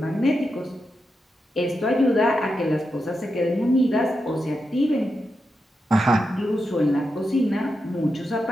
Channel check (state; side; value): normal; both; correlation 0.87